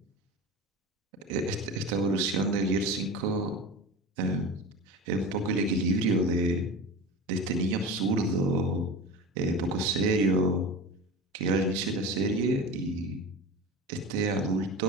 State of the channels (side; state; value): both; normal; correlation 0.31